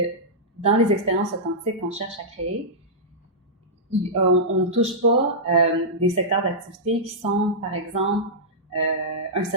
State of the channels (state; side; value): normal; both; correlation -0.13